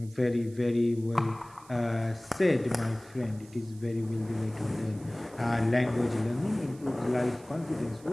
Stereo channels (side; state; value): right; noise; hiss, 25 dB below the sound